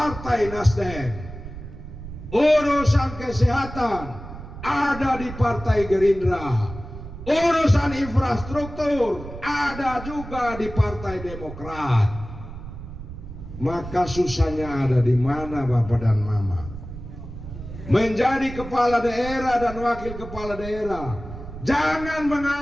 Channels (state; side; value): noise; right; rumble, 12 dB below the sound